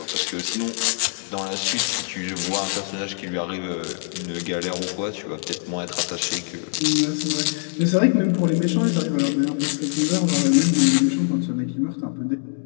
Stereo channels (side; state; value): right; silent; digital silence